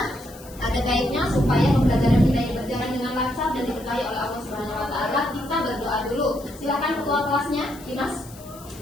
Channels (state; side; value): noise; left; hiss, 20 dB below the sound